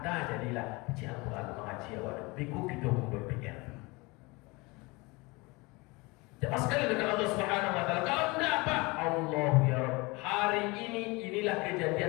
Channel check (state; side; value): quieter; right; 25.1 dB